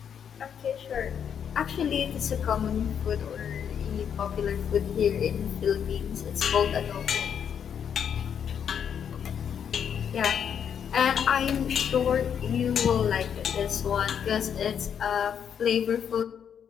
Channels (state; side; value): quieter; right; 8.1 dB